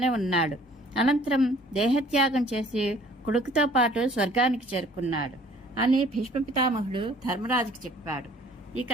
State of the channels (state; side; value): normal; both; correlation 0.55